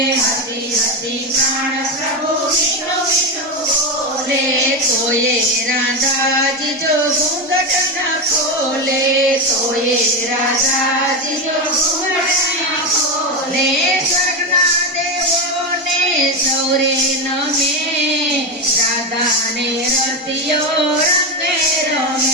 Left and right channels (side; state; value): both; normal; correlation 0.13